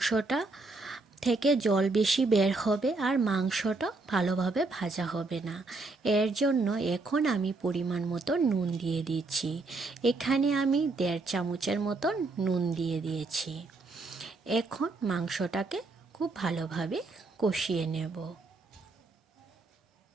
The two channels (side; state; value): left; quieter; 3.5 dB